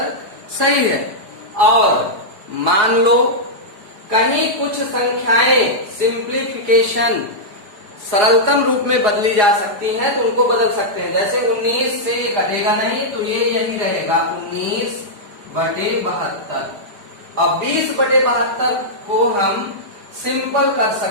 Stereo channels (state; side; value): late; left; 4.8 ms